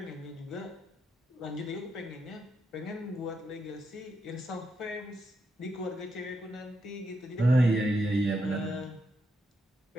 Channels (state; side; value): normal; both; correlation 0.82